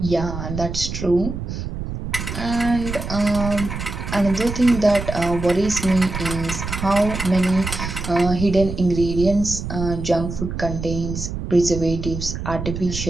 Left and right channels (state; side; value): noise; right; rumble, 6 dB below the sound